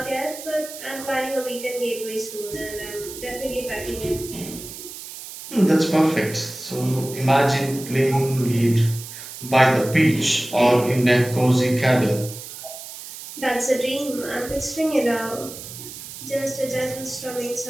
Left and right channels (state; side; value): noise; right; hiss, 12 dB below the sound